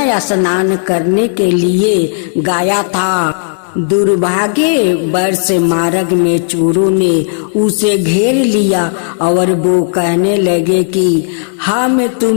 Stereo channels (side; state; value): right; silent; digital silence